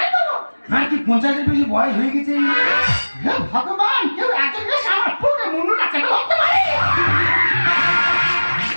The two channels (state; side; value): inverted; both; correlation -1.00